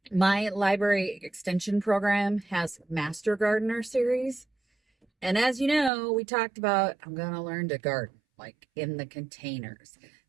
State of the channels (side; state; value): left; drops out; at 5.9 s